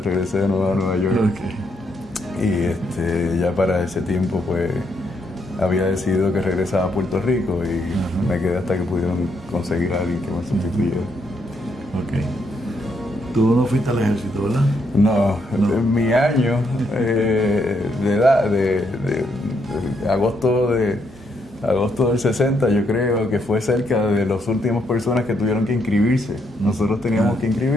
de nuevo a Nueva York. Y ya para ese tiempo pues había decidido que regresaba a Puerto Rico y me quedé hasta que pudieron conseguir a alguien que me sustituyera. Tú no fuiste al ejército, ¿verdad? No. En mi año de edad, de agosto del 60, yo creo que fue cerca de las últimas personas que tuvieron que inscribirse. Nosotros teníamos que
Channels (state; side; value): normal; both; correlation 0.76